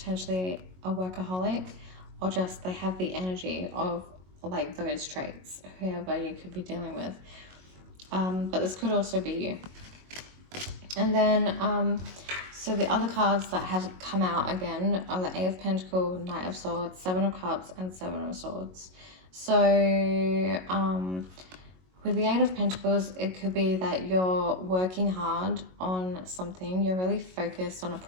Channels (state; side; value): late; left; 22 ms